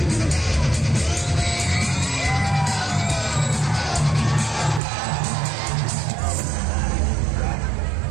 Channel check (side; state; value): left; drops out; at 4.8 s